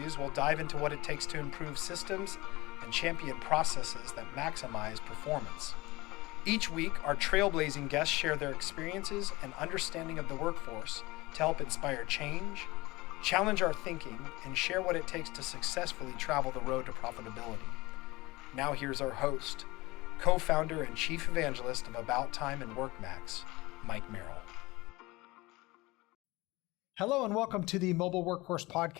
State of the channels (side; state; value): right; quieter; 21.3 dB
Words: we'll dive into what it takes to improve systems and champion processes that maximize performance. Each week, our trailblazing guests share their experiences and understanding of the workforce to help inspire change, challenge our thinking, and share what it takes to successfully travel the road to profitability. Now here's our host, co-founder and chief evangelist of About Time and WorkMax, Mike Merrill. Hello and welcome to the Mobile Workforce